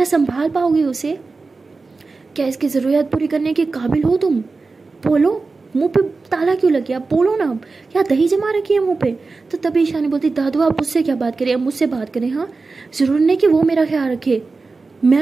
संभाल पाओगी उसे, क्या इसकी ज़रूरत पूरी करने के काबिल हो तुम, बोलो। मुंह पे ताला क्यों लग गया, बोलो ना, क्या दही जमा रखी है मुंह पे। तो तभी ईशानी बोलती दादू आप मुझसे क्या बात करें, अब मुझसे बात करें, हाँ ज़रूर नहीं कि वो मेरा ख्याल रखे,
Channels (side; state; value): left; quieter; 4.0 dB